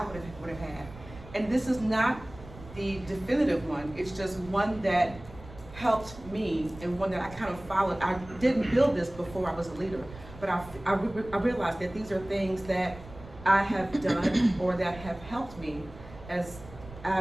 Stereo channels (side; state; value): right; noise; rumble, 17 dB below the sound